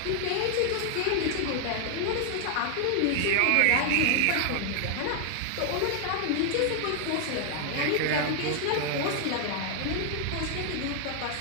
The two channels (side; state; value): both; different; correlation 0.00